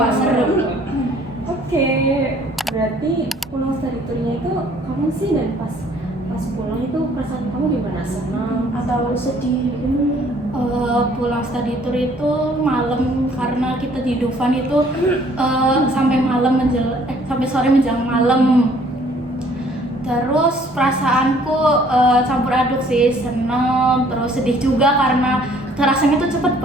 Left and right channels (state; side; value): normal; both; correlation 0.59